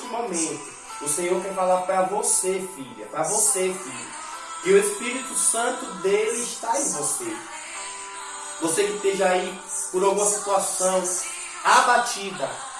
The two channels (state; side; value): identical; both; correlation 1.00